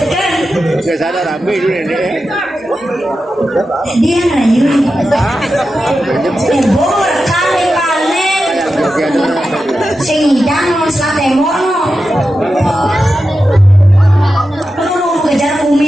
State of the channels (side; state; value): both; normal; correlation 0.91